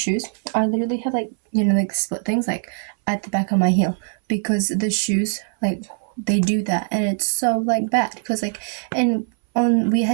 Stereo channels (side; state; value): left; silent; 65 dB below the other